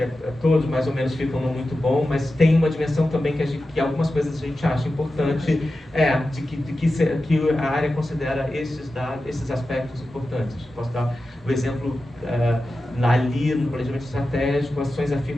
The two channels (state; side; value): normal; both; correlation 0.93